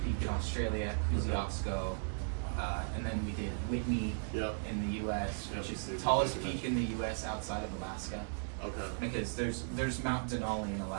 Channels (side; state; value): left; silent; digital silence